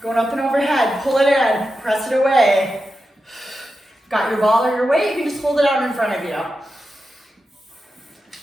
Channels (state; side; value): normal; both; correlation 0.90